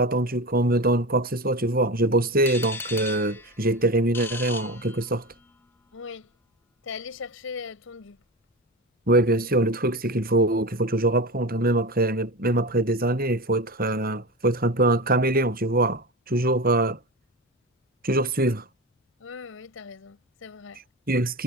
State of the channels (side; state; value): both; normal; correlation 0.25